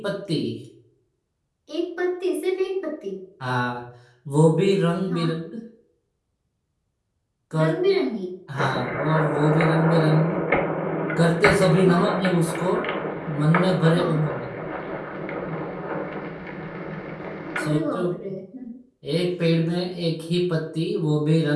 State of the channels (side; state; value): both; identical; correlation 1.00